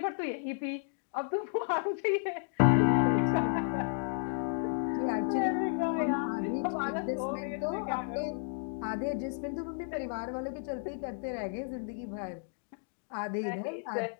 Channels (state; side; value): silent; right; digital silence